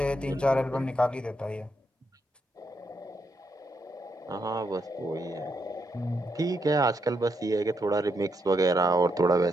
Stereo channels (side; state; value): both; normal; correlation 0.80